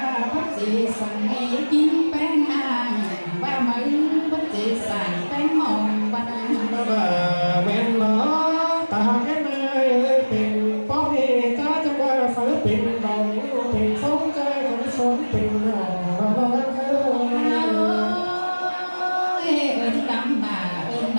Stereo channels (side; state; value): both; inverted; correlation -1.00